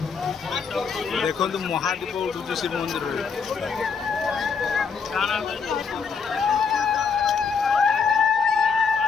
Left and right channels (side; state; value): right; quieter; 5.6 dB